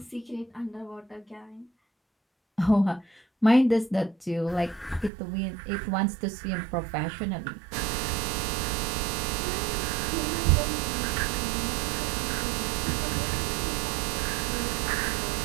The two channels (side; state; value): left; drops out; at 5.1 s